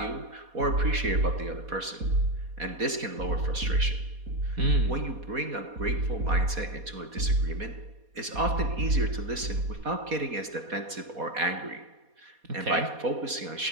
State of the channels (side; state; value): left; late; 4.2 ms